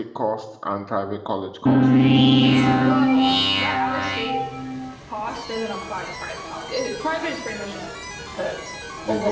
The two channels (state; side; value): identical; both; correlation 1.00